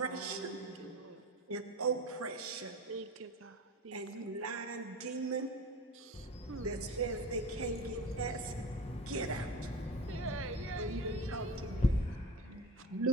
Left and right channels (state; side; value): normal; both; correlation 0.32